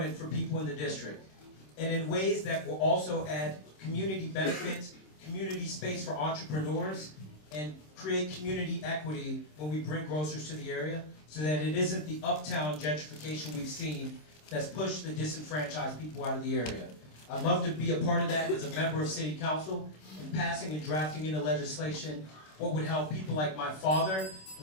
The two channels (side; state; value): right; late; 26 ms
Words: for people in the district. And in ways that will also add community benefits, community space for entrepreneurs, and create community equity when we bring grocers to the area, so that it isn't the uptown gentrification we've seen that's pushed the disenfranchised people out of the area. I'd love to be a part of that as a member of City Council and passing and drafting into legislation what would help people like my father